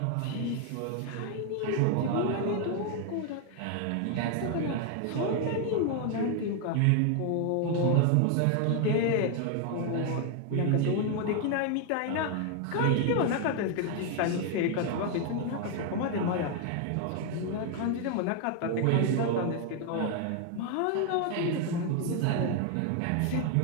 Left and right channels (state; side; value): different; both; correlation 0.00